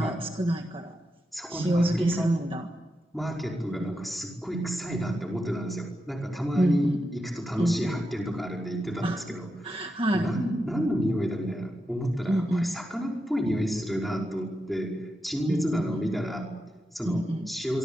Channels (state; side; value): normal; both; correlation 0.87